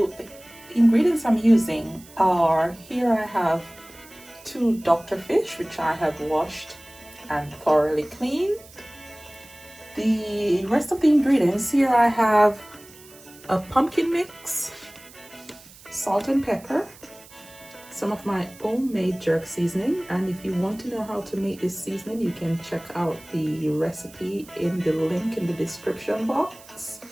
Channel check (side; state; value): right; noise; hiss, 22 dB below the sound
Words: ingredients I'm using are, here I have 2 doctor fish which I have washed and thoroughly cleaned. The rest of the ingredients, here I have a pumpkin mix, salt and pepper, some of my homemade jerk seasoning, and if you want to know how to make this seasoning, you can check out the recipe in the link in the description box.